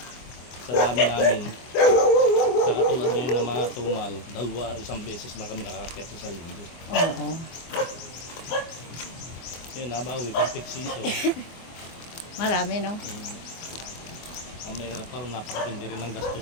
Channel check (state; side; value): late; right; 24 ms